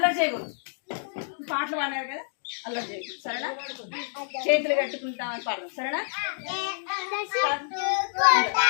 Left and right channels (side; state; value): right; silent; digital silence